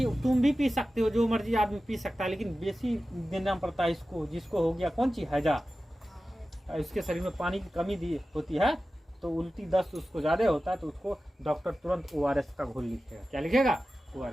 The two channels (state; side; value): normal; both; correlation 0.94